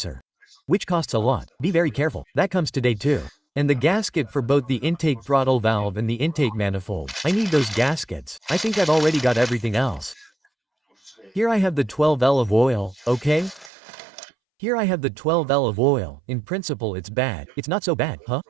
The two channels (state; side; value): drops out; left; at 13.7 s